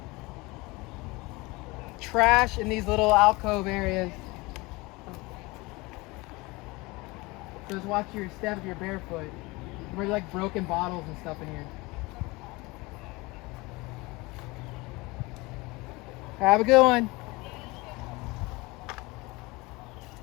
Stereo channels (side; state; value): right; quieter; 23.6 dB